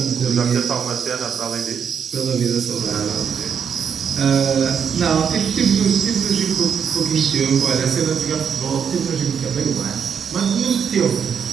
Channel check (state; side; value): quieter; left; 7.2 dB